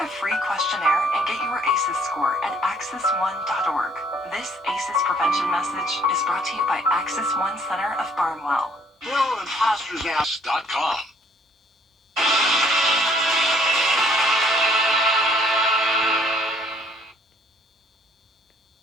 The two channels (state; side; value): normal; both; correlation 0.62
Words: free questionnaire and get your ACEs score at access1.org. This ACEs prevention message is brought to you by Access One Center of Barnwell. BillImposters.com.